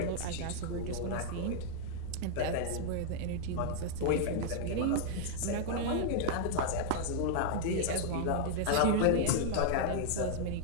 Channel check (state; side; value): different; both; correlation -0.01